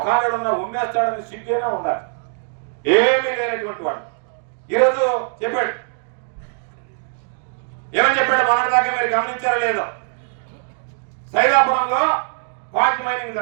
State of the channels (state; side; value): silent; left; digital silence